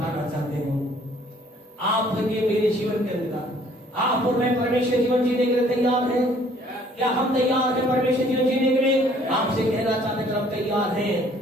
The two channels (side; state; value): both; normal; correlation 0.59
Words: चाहते हैं, आपके मेरे जीवन के अंदर आप और मैं परमेश्वर जीवन जीने के लिए तैयार हैं? क्या हम तैयार हैं परमेश्वर जीवन जीने के लिए? आपसे कहना चाहते हैं हम तैयार हैं।